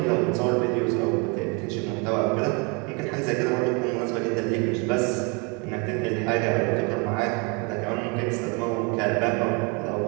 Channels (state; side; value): quieter; left; 31.4 dB